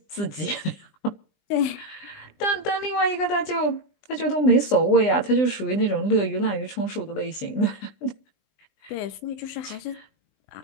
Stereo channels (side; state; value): right; late; 20 ms